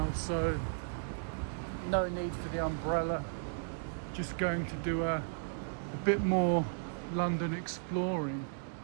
so no need for the umbrella. Just going to do a bit more London exploring,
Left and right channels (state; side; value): silent; left; digital silence